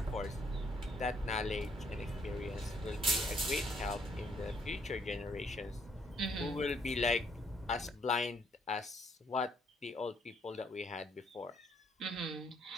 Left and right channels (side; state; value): both; normal; correlation 0.68